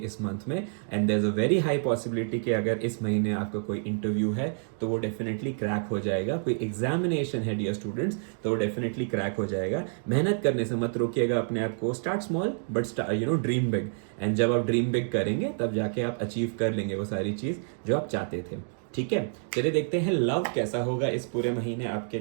मंथ में। And there is a very high possibility कि अगर इस महीने आपका कोई इंटरव्यू है तो वो डेफिनेटली क्रैक हो जाएगा। कोई एग्जामिनेशन है डियर स्टूडेंट्स तो वो डेफिनेटली क्रैक हो जाएगा। मेहनत करने से मत रोकिएगा अपने आप को। Start small but dream big. And जब आप ड्रीम बिग करेंगे तब जाके आप अचीव कर लेंगे वो सारी चीज़ जो आप चाहते थे। ठीक है, चलिए देखते हैं लव कैसा होगा इस पूरे महीने आपके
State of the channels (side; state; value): left; silent; digital silence